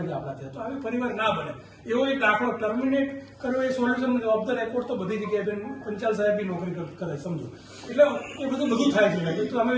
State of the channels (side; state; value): both; identical; correlation 1.00